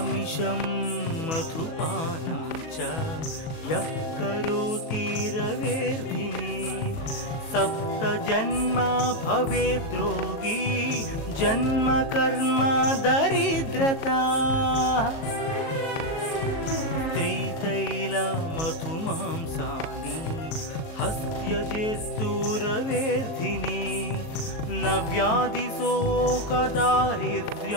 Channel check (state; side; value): late; right; 38 ms